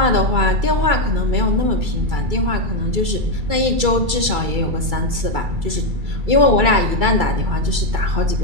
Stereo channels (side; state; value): left; late; 2.3 ms